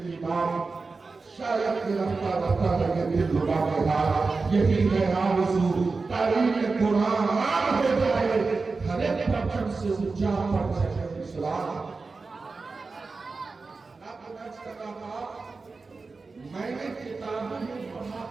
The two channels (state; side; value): quieter; left; 4.1 dB